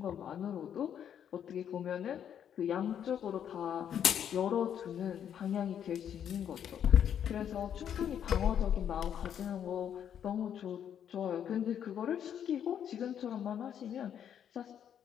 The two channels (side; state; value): right; quieter; 9.1 dB